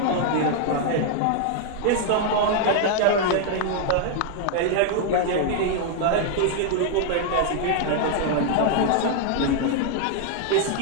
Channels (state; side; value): different; both; correlation 0.00